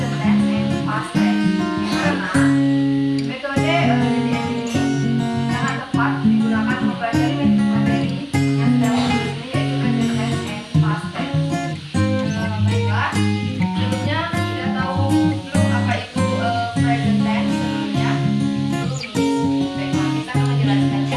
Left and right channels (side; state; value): both; identical; correlation 1.00